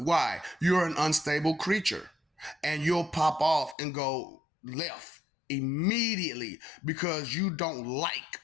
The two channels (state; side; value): drops out; right; at 3.8 s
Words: You're an unstable creature and you'll pop off and go left immediately because you don't like